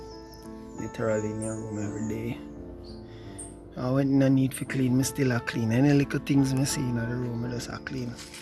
Literally in your room every day. I went in a need for clean, me still a clean. Any little things me see in the room, I just a clean.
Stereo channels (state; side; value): identical; both; correlation 1.00